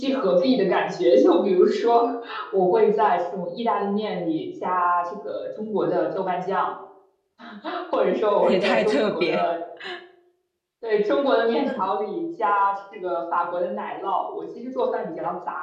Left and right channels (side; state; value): both; identical; correlation 1.00